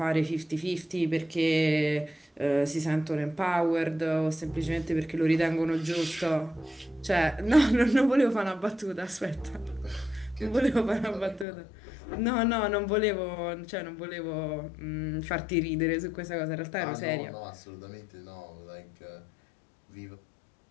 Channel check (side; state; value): right; drops out; at 11.5 s